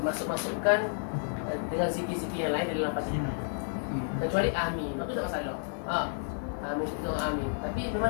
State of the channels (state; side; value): silent; right; 57 dB below the other